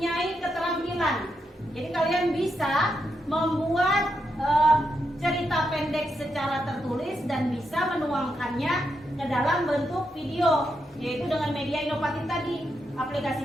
keterampilan. Jadi kalian bisa membuat cerita pendek secara tertulis dan bisa menuangkannya ke dalam bentuk video, yaitu dengan media inovatif tadi,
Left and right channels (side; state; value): both; normal; correlation 0.83